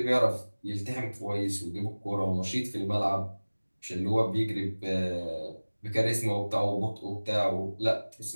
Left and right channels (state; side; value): inverted; both; correlation -1.00